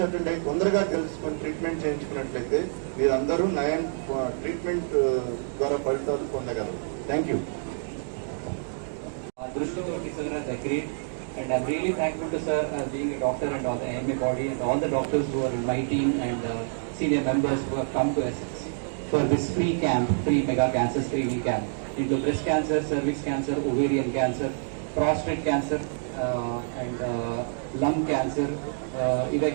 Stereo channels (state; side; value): silent; left; digital silence